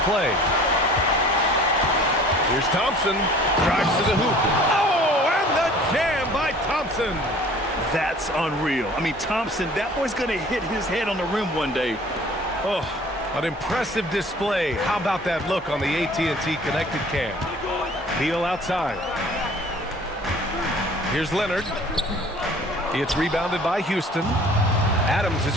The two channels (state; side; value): normal; both; correlation 0.50